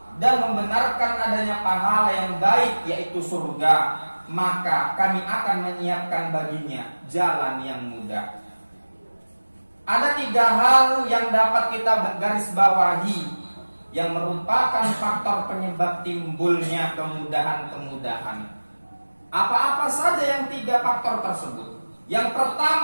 dan membenarkan adanya pahala yang baik yaitu surga, maka kami akan menyiapkan baginya jalan yang mudah. Ada 3 hal yang dapat kita garis bawahi yang merupakan faktor penyebab timbulnya kemudahan-kemudahan. Apa-apa saja yang 3 faktor tersebut? Yang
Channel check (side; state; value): both; inverted; correlation -1.00